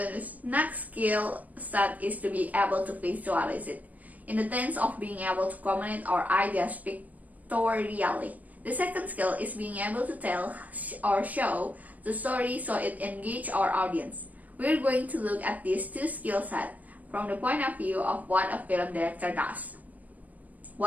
next skill set is to be able to visualize it, in the sense of being able to communicate our ideas pictorially. The second skill is being able to tell or show the story so it engages our audience. We're going to look at these two skill sets from the point of view of what a film director does.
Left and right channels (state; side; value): late; left; 0.075 ms